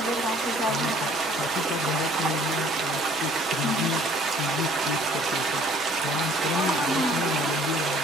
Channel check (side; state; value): both; normal; correlation 0.56